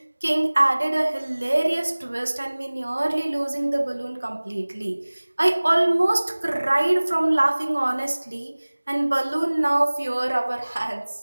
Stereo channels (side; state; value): both; inverted; correlation -1.00